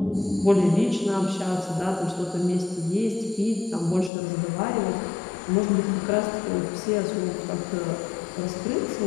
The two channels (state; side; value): drops out; right; at 4.1 s